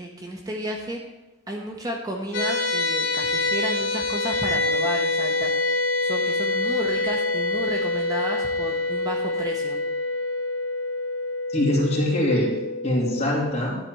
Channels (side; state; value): both; normal; correlation -0.06